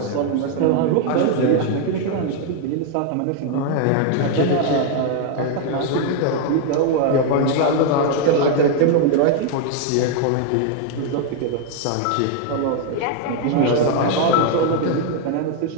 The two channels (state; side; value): different; both; correlation 0.00